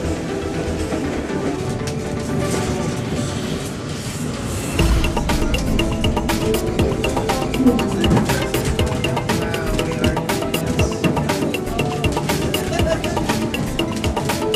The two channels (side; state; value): both; identical; correlation 1.00